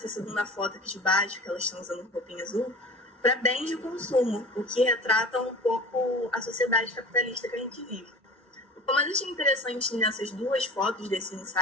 segunda foto aqui de baixo, que elas estão usando roupinha azul, para bens de consumo, o que retrata um pouco a sociedade capitalista que a gente vive. O que eu mais achei interessante nessas 2 fotos desse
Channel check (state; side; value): normal; both; correlation 0.38